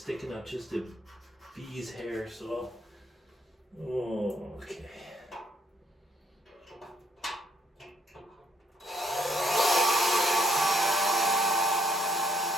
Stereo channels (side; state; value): both; normal; correlation 0.70